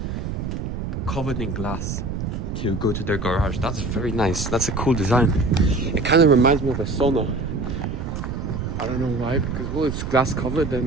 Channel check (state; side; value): noise; right; rumble, 4 dB below the sound